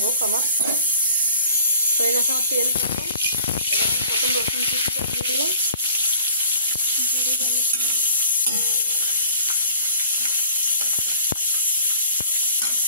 হোক। আমার হয়ে গেছে আমার তেল গরম। এবার আমি প্রথম রসুন কুচিটা দিয়ে দিলাম।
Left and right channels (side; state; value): both; inverted; correlation -0.50